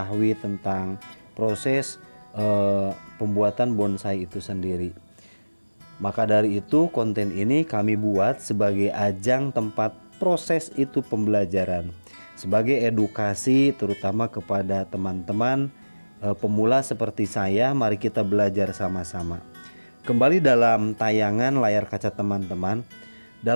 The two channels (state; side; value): inverted; both; correlation -1.00